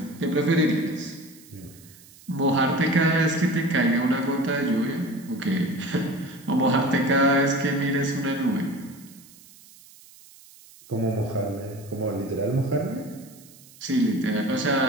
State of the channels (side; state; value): right; noise; hiss, 23 dB below the sound